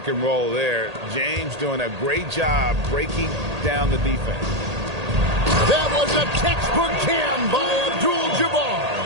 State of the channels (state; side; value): late; left; 1.8 ms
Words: and roll there. James doing a great job breaking down the defense. That was a textbook jam by